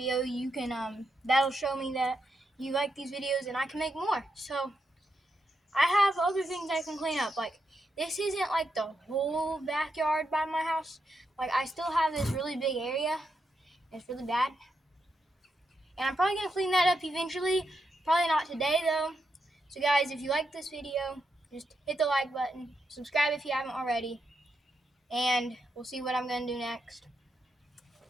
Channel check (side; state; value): both; normal; correlation 0.83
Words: you can, that'll show me that you like these videos and I can make more. So I have other things I can clean up. Like, this isn't like the whole backyard by my house. Like, I still have this really big area. It's really bad. And I'm probably going to clean that up eventually. Probably not today, though. So, guys, if you like this video, just hit the like button. Subscribe if you haven't already. And we'll see what I'm going to do next.